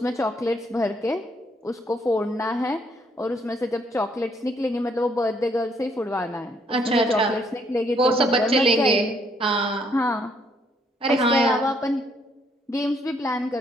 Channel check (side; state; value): both; normal; correlation 0.69